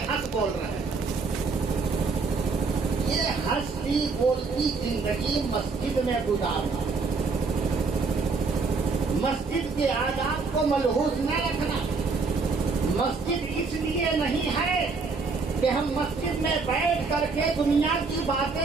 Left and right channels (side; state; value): left; quieter; 4.4 dB